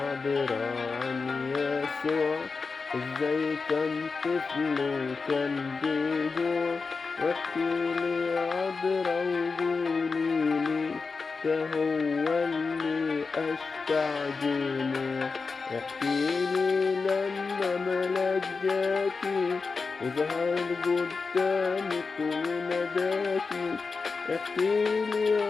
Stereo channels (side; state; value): right; quieter; 4.5 dB